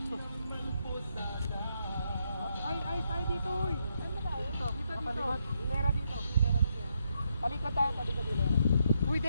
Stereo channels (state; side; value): inverted; both; correlation -0.78